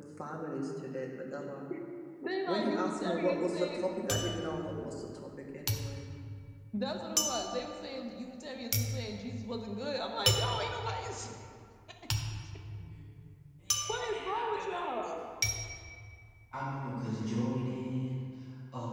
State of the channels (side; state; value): both; identical; correlation 1.00